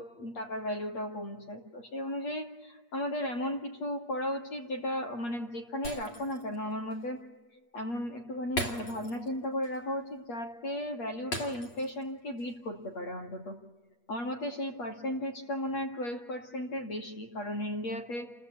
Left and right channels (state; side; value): late; right; 8.4 ms